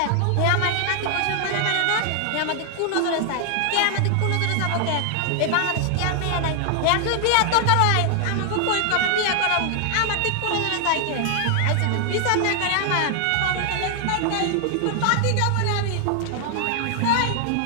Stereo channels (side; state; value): both; different; correlation 0.00